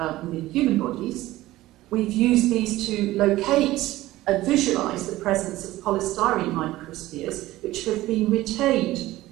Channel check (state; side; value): quieter; left; 16.8 dB